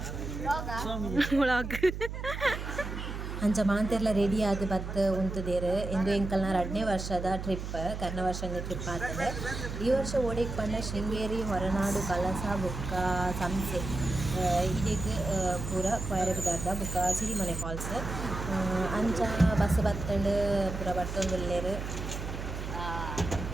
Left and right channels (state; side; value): noise; right; hum, 6 dB below the sound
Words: ವ್ಲಾಗ್ ಅಂಚ ಮಾಂತೆರ್ಲ ರೆಡಿ ಆದ್ ಬತ್ ಉಂತುದೆರ್ ಇಂದು ಎಂಕಲ್ನ 2ನೇ ವರ್ಷದ ಟ್ರಿಪ್ ಕರ್ನ ವರ್ಷದ ಟ್ರಿಪ್ ಆಗ್ತದೆ. ಈ ವರ್ಷ ಓಡೆಗ್ ಪಂಡ ಶೃಂಗೇರಿ ಹೊರನಾಡು ಕಲಸ ಬುಕ್ಕ ಸಂಸೆ ಇದೆಗ್ ಪೂರ ಕೊಯರೆ ಬಿದ್ದಾರ್ದ ಬುಕ್ಕ ಸಿರಿಮನೆ ಫಾಲ್ಸ್ ಅಂಚ ಬಸ್ ಬತ್ತಂಡ್ ಪೂರ ಬರ್ತೊಂದುಲ್ಲೆರ್